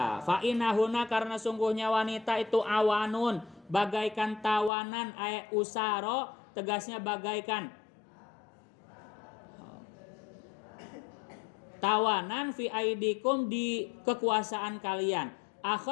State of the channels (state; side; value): drops out; right; at 4.7 s